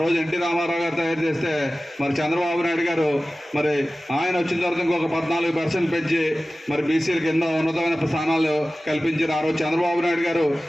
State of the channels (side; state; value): both; normal; correlation 0.96